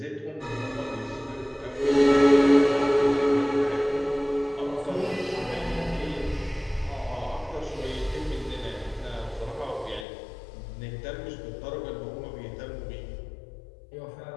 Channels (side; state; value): right; drops out; at 10.1 s